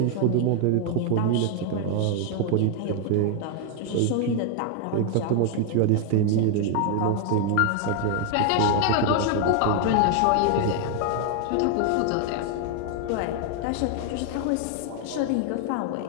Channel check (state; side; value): different; both; correlation 0.00